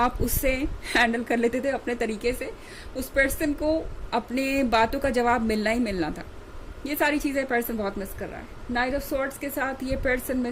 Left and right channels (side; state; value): both; identical; correlation 1.00